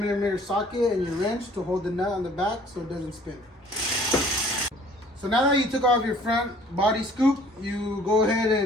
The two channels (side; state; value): both; normal; correlation 0.54